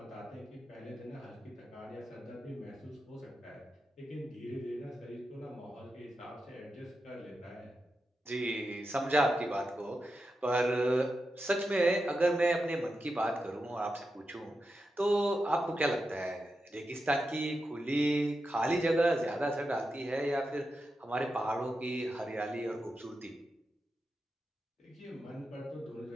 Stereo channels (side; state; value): both; normal; correlation 0.89